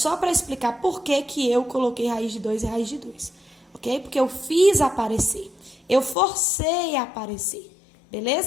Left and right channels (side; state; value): right; drops out; at 6.2 s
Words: para explicar por que eu coloquei raiz de 2 e raiz de 2, ok? Porque eu fiz aparecer, eu forcei a aparecer,